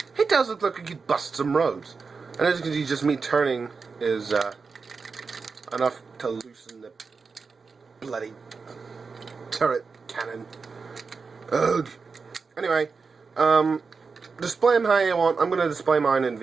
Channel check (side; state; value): left; quieter; 4.8 dB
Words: It does look like he could bust some roads. And as you can see, just me turning is enough to loosen the bloody turret cannon. Ugh. Anyway, display him how you want. I'm going to display mine in